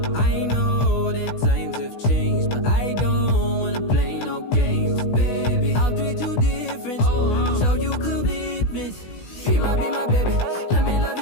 I know that times have changed, but I don't wanna play no games, baby. I'll treat you different, show you commitment. Be my baby, let me love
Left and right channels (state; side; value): late; right; 16 ms